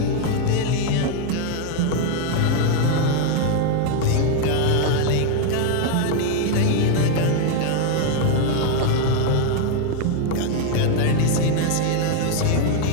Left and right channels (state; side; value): different; both; correlation 0.01